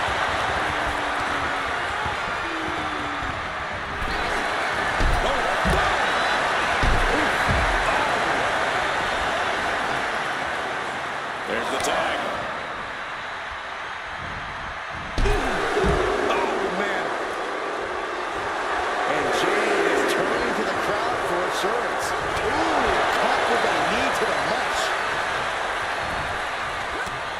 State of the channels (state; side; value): identical; both; correlation 1.00